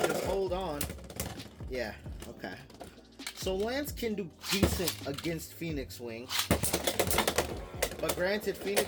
just hold on. Yeah. Okay. So Lance can do decent against Phoenix Wing. But granted,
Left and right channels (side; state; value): both; identical; correlation 1.00